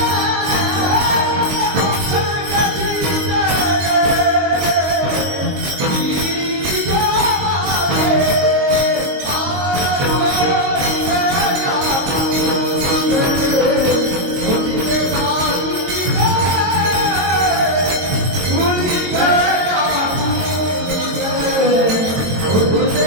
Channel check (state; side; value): late; left; 22 ms